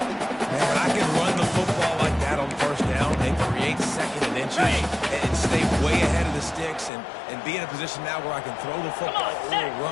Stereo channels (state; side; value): drops out; right; at 6.9 s